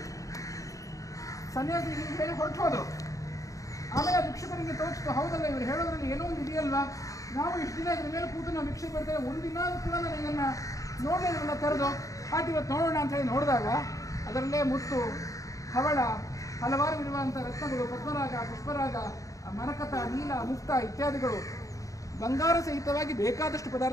ಸನ್ಯಾಸಿ ಹೇಳಿ ಹೊರಟು ಹೋದರು. ಆಮೇಲೆ ಆ ಭಿಕ್ಷುಕರಿಗೆ ತೋರಿಸ್ತು, ಹೌದಲ್ಲ ಇವರು ಹೇಳೋದ್ರಲ್ಲಿ ಏನೋ ಒಂದು ಇದೆಯಲ್ವಾ, ನಾವು ಇಷ್ಟು ದಿನ ಇದ್ರ ಮೇಲೆ ಕೂತು ನಾವು ಭಿಕ್ಷೆ ಬೇಡ್ತೇವೆ, ಒಂದಿನ ಕೂಡ ನಾನು ಇದನ್ನು ನೋಡಲಿಲ್ಲ ತೆರೆದು, ಆಟ ಇವತ್ತು ನೋಡೋಣ ಅಂತ ಹೇಳಿ ನೋಡಿದಾಗ ಅದರಲ್ಲೇ ಮುತ್ತು, ಹವಳ, ಹಲವಾರು ವಿಧವಾದಂಥ ರತ್ನಗಳು, ಪದ್ಮರಾಗ, ಪುಷ್ಪರಾಗ, ಮರಕತ, ನೀಲ, ಮುಕ್ತ ಇತ್ಯಾದಿಗಳು ಬಂಗಾರ ಸಹಿತವಾಗಿ ಬೇಕಾದಷ್ಟು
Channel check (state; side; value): late; right; 0.16 ms